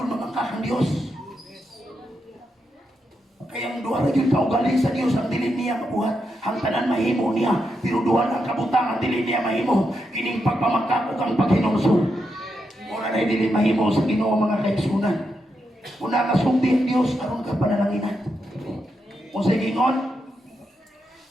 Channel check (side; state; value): both; normal; correlation 0.84